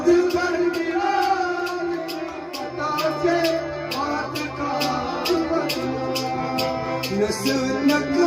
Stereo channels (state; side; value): identical; both; correlation 1.00